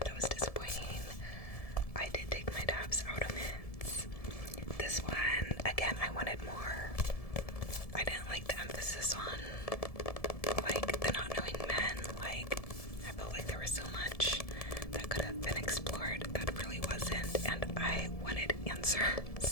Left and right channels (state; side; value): late; right; 1.7 ms